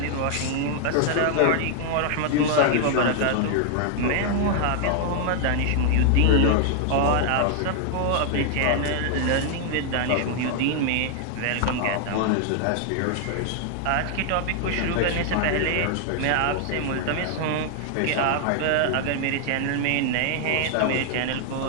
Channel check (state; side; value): different; both; correlation 0.00